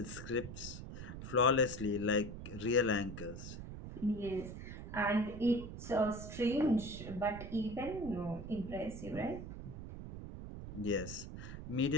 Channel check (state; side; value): noise; right; rumble, 9 dB below the sound